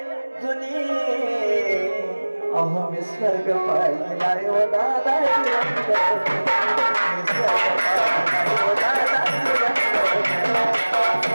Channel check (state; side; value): inverted; both; correlation -1.00